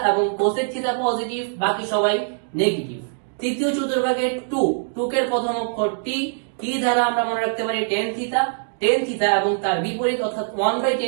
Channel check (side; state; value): left; silent; digital silence